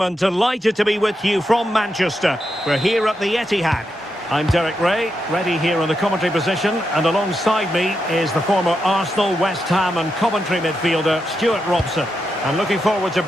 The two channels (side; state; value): both; normal; correlation 0.85